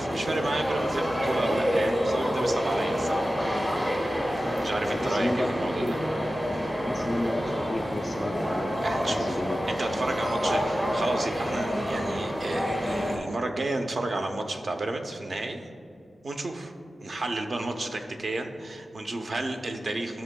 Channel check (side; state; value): both; normal; correlation 0.94